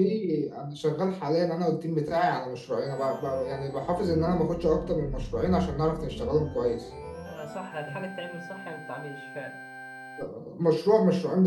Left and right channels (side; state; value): both; identical; correlation 1.00